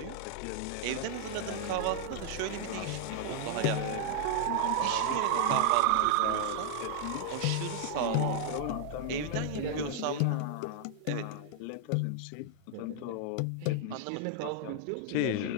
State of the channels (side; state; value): both; different; correlation -0.01